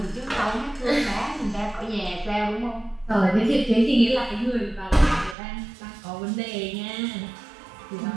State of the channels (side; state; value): left; drops out; at 5.4 s